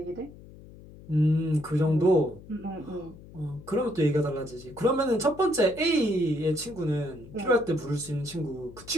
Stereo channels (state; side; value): noise; left; hum, 19 dB below the sound